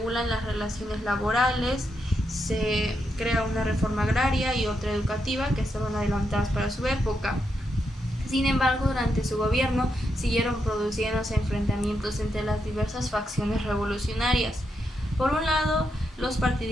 las relaciones laborales, se crea una reforma agraria y otra educativa que estaban adelantadas para su época. Sin embargo, durante su gobierno siguieron produciéndose enfrentamientos entre las diversas facciones revolucionarias. Por un lado, los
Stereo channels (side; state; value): both; normal; correlation 0.82